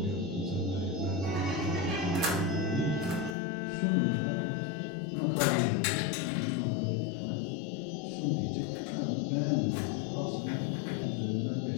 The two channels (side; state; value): right; drops out; at 3.4 s